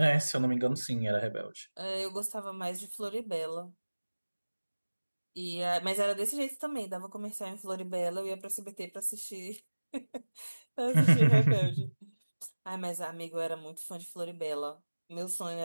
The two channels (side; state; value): both; inverted; correlation -1.00